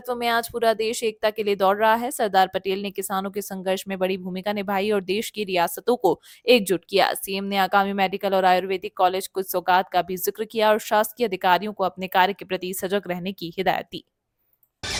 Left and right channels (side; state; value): both; identical; correlation 1.00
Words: में आज पूरा देश एकता के लिए दौड़ रहा है। सरदार पटेल ने किसानों के संघर्ष में बड़ी भूमिका निभाई और देश की रियासतों को एकजुट किया। सीएम ने आगामी मेडिकल और आयुर्वेदिक कॉलेज कुछ सौगात का भी जिक्र किया और शासकीय अधिकारियों को अपने कार्य के प्रति सजग रहने की हिदायत दी।